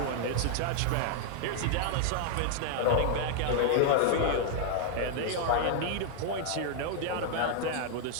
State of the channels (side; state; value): both; different; correlation 0.00